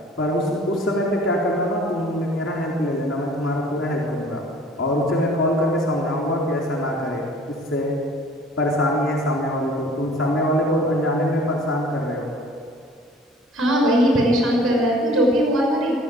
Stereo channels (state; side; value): normal; both; correlation 0.50